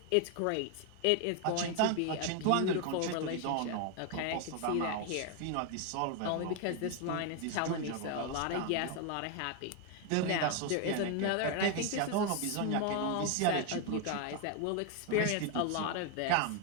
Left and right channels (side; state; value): both; different; correlation 0.01